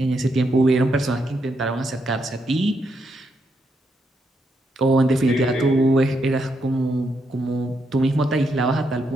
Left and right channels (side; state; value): both; normal; correlation 0.80